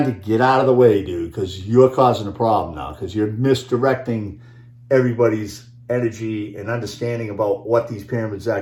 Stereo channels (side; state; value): both; identical; correlation 1.00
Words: to get out of the way, dude, because you're causing a problem now, because you're misdirecting everybody's energy and understanding about what these pyramids